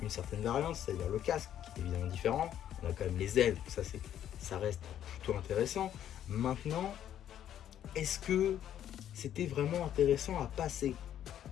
une certaine variante, c'est-à-dire le casque qui est évidemment différent. On a quand même les ailes, ça reste plutôt intéressant. Maintenant, est-ce que c'était vraiment intéressant à passer?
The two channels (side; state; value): right; quieter; 10.7 dB